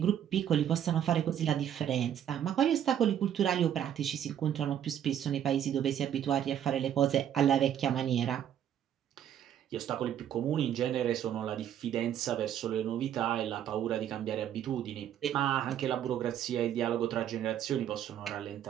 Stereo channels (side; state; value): left; quieter; 10.1 dB